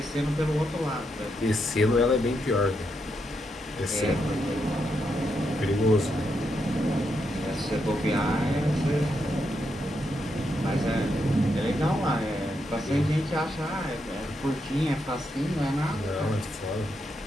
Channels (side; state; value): both; normal; correlation 0.81